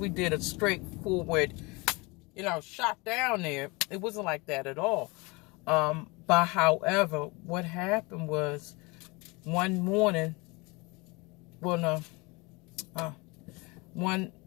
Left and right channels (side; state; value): right; quieter; 26.2 dB